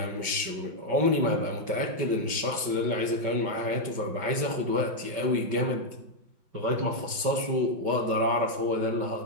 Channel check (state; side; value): late; left; 5.3 ms